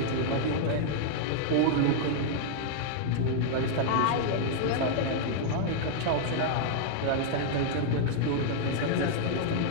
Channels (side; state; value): both; different; correlation -0.01